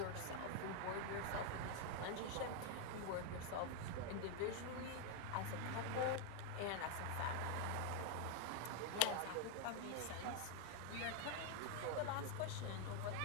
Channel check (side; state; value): both; different; correlation 0.01